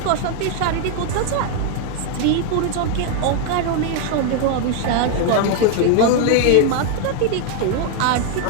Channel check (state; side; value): different; both; correlation 0.00